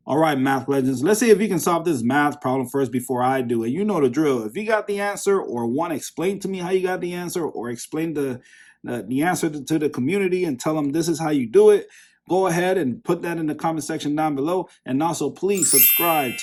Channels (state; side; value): identical; both; correlation 1.00